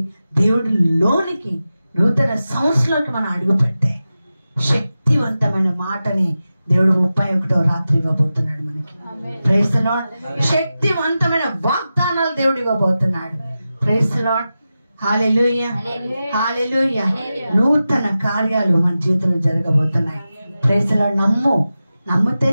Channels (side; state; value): both; inverted; correlation -0.93